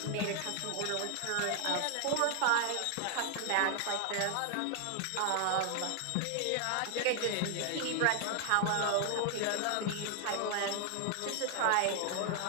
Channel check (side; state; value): both; different; correlation 0.00